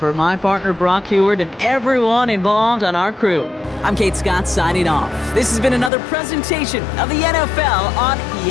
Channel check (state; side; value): drops out; right; at 5.9 s